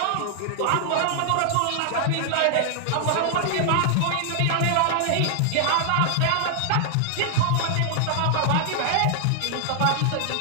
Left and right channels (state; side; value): different; both; correlation 0.00